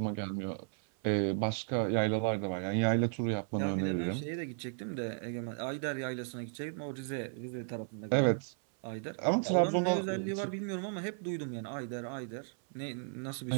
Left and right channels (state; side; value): silent; left; 55 dB below the other